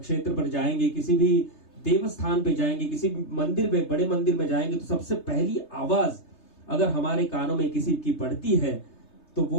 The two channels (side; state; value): right; late; 3.3 ms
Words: पर जाएंगे, किसी भी देवस्थान पे जाएंगे, किसी मंदिर में, बड़े मंदिर में जाएंगे, तो सबसे पहली आवाज अगर हमारे कानों में किसी की पड़ती है तो